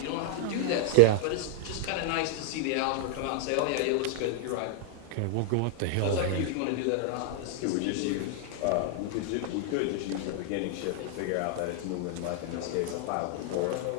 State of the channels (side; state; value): both; different; correlation 0.00